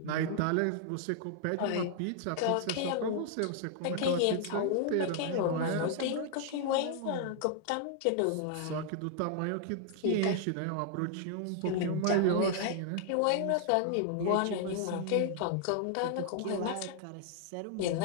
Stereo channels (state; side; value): different; both; correlation 0.00